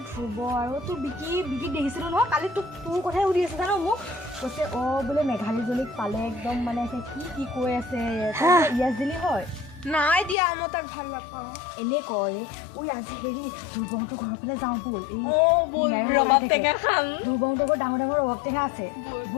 ধ্ৰুৱ আৰু তোৰ বিকি দেখিছিলোঁ নহয়। কালি তোৰ কথাই সুধি আছে জানো মোক। কৈছে বোলে মেঘালীজনীক পালে একদম মানে কি কৈ আছে। ইয়াছ দিলি হয়? নাই দিয়া, মই তাক ভাল নাপাওঁ। এনে কয় আজি হেৰি ধ্ৰুৱহঁতৰ ঘৰৰ ফালে যাওঁ ব'ল। ৰবাব টেঙা খাম। ধ্ৰুৱহঁতৰ ঘৰত ডাঙৰ ৰবাব টেঙা আছে।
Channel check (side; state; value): right; drops out; at 10.4 s